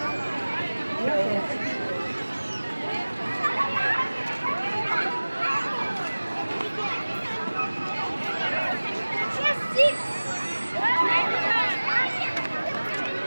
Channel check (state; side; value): inverted; both; correlation -1.00